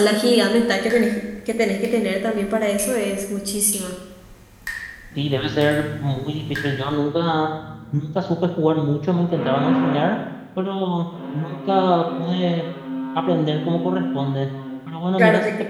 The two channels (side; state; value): both; identical; correlation 1.00